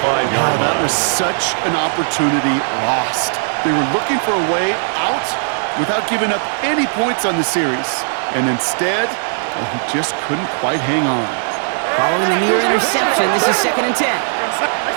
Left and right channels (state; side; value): silent; left; 68 dB below the other